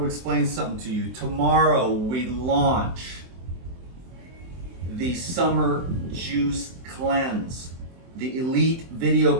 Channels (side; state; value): left; late; 23 ms